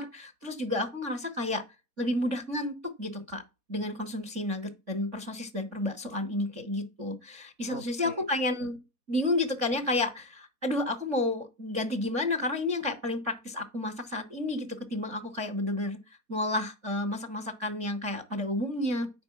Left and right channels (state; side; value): late; left; 4.2 ms